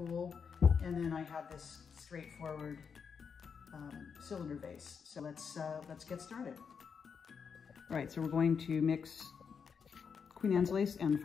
And then I have this straightforward cylinder vase. So let's get started. All right, so we're going to mix Queen Anne's lace and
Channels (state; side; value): quieter; right; 6.3 dB